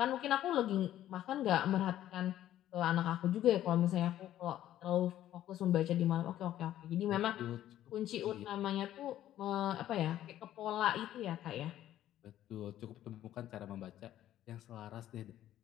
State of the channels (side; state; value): right; quieter; 12.5 dB